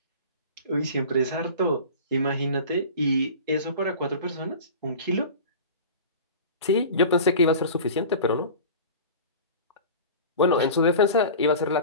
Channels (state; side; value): inverted; both; correlation -0.37